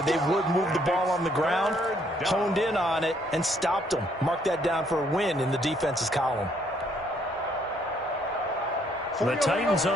they would move the ball on the ground, honed in on it, and stopped them. Mark that down for a win in the defense's column. The Titans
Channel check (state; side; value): normal; both; correlation 0.68